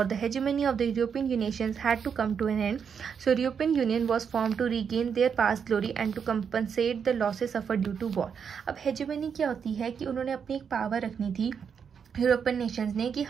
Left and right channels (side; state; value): left; quieter; 6.9 dB